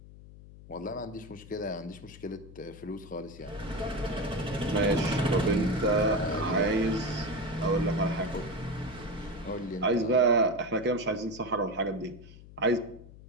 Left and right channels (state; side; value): noise; left; hum, 18 dB below the sound